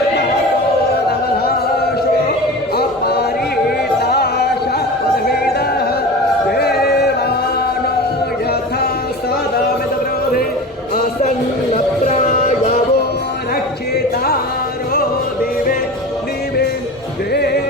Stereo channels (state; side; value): normal; both; correlation 0.32